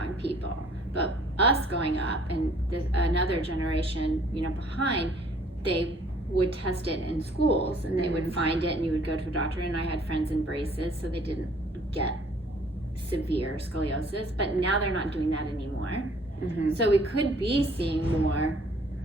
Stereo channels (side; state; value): both; normal; correlation 0.57